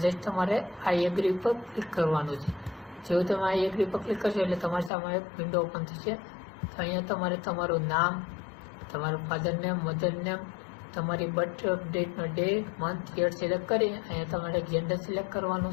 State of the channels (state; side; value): drops out; right; at 4.9 s